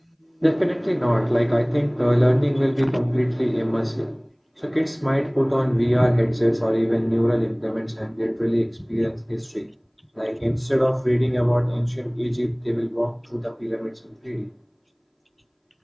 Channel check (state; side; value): identical; both; correlation 1.00